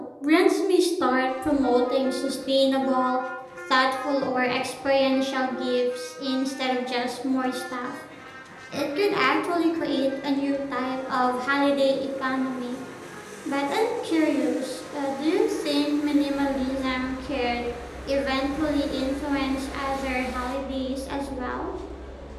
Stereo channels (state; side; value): identical; both; correlation 1.00